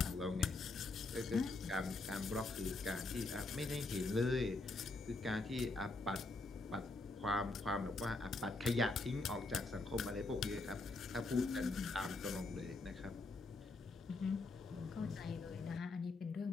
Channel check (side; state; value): right; quieter; 3.3 dB